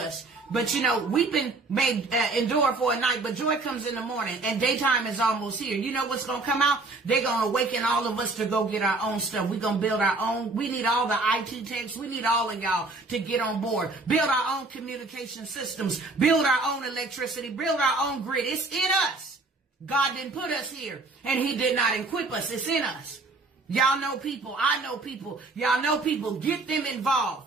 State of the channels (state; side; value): quieter; left; 3.4 dB